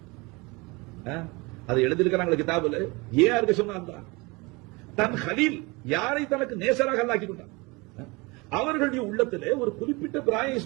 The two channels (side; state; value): left; quieter; 25.8 dB